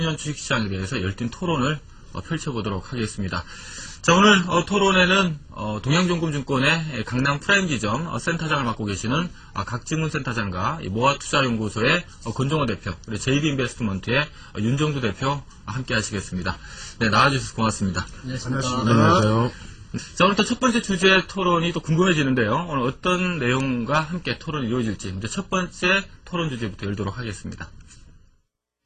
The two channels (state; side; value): identical; both; correlation 1.00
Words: 주식시장에 대해서 열띤 토론을 펼쳐보도록 하겠습니다. 자, 오늘 토론에는 동양종금증권의 강남 프라임지점 센터장을 맡고 계시는 각지문 센터장과 모아투자연구소의 권종호 대표, 그리고 JD인베스트먼트의 윤정두 대표 함께 하시겠습니다. 네, 나와주셔서 고맙습니다. 네, 안녕하세요. 자, 오늘 또 첫 번째 주제 토론이 또 궁금해지는데요. 오늘 어떤 내용과 함께 토론이 이루어질지 이제 첫 번째 토론 주제부터 열도록 하겠습니다.